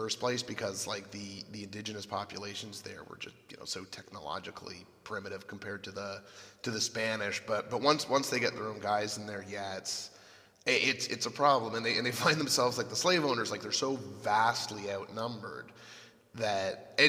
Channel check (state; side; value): identical; both; correlation 1.00